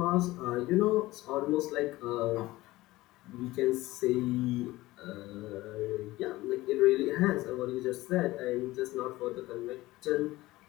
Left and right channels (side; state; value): right; quieter; 18.3 dB